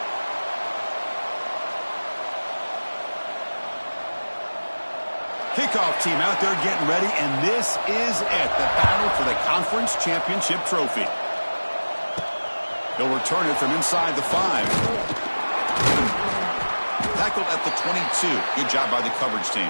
Kickoff team out there getting ready, and this is it, the battle for the Conference Championship Trophy. He'll return it from inside the 5. Tackled at the 22. Good job by the coverage team.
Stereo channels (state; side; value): inverted; both; correlation -1.00